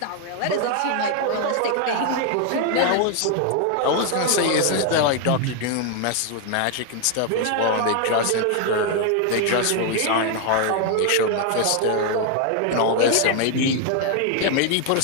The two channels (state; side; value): different; both; correlation 0.00